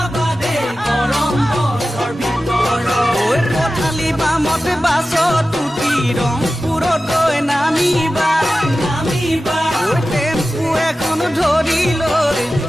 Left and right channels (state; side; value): normal; both; correlation 0.94